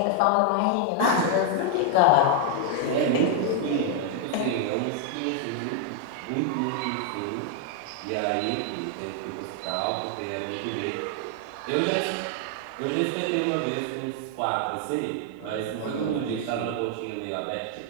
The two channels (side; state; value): both; different; correlation 0.00